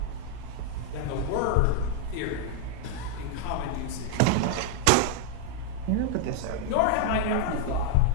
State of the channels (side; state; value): both; different; correlation 0.00